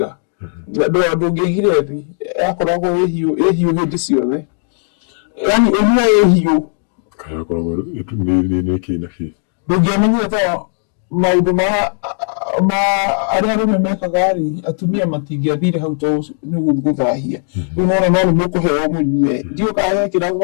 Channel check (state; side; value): silent; right; 66 dB below the other